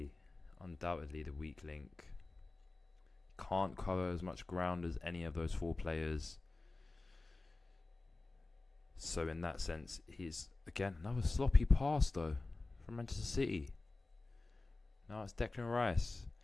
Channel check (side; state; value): right; quieter; 3.3 dB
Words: the weak link. Can't cover as much ground as any of those four players. So in that sense, he's again another sloppy pass though from Manchester City. Now it's Declan Rice.